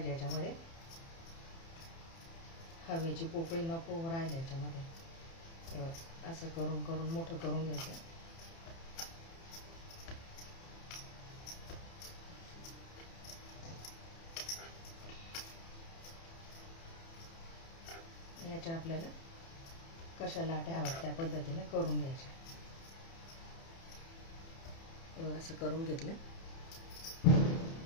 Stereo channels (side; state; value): right; late; 30 ms